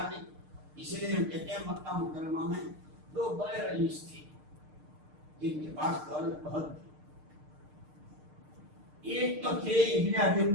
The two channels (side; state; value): left; late; 6.6 ms